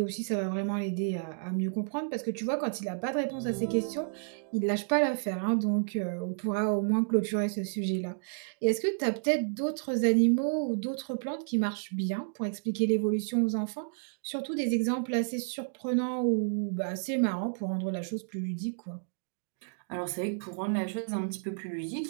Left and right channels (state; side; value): silent; left; digital silence